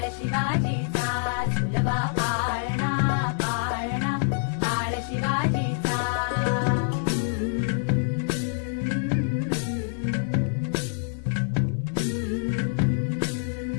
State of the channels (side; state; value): right; silent; 59 dB below the other